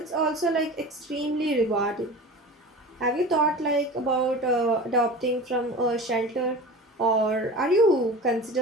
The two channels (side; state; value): both; normal; correlation 0.35